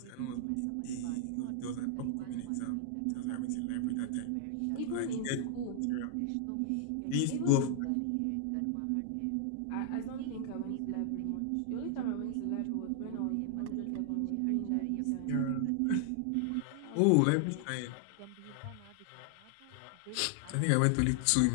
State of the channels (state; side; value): different; both; correlation 0.00